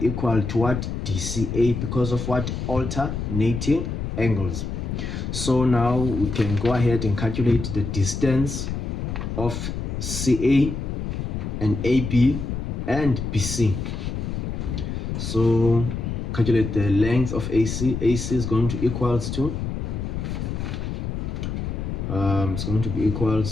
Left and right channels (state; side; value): noise; left; rumble, 4 dB below the sound